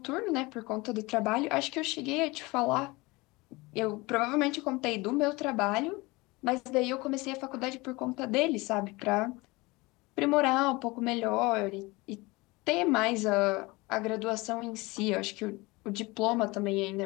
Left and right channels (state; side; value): quieter; right; 23.3 dB